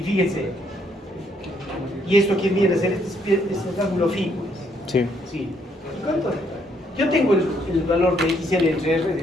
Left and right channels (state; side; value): normal; both; correlation 0.70